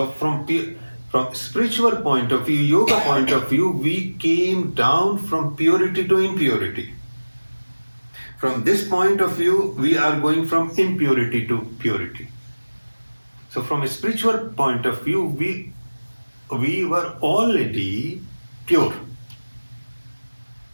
from spiritual point of view, yoga point of view, we came down from purity to impurity. From this point of view, we are going from impurity to purity. So from a spiritual point of view, we were already pure.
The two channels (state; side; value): inverted; both; correlation -1.00